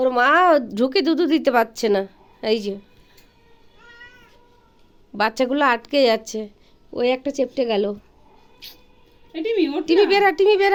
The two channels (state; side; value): identical; both; correlation 1.00